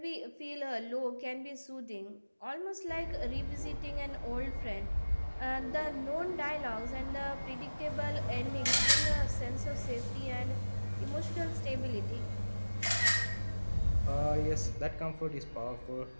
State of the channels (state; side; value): inverted; both; correlation -1.00